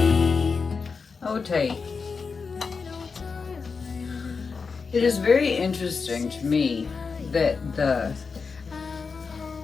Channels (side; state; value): right; quieter; 5.0 dB